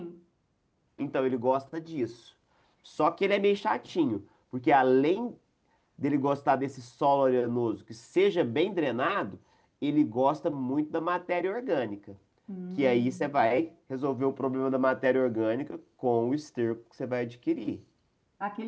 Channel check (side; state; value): both; identical; correlation 1.00